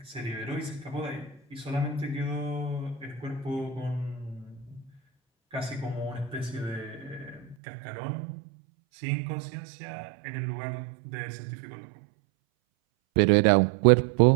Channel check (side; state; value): left; drops out; at 7.6 s